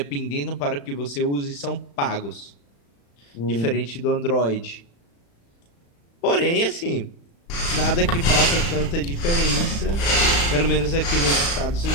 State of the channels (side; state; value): right; late; 35 ms